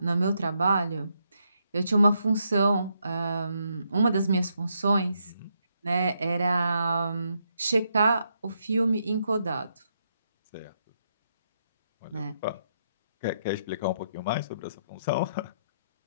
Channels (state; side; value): inverted; both; correlation -0.78